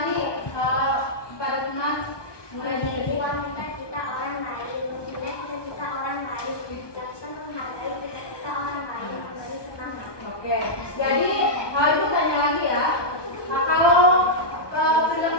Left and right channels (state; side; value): late; right; 1.2 ms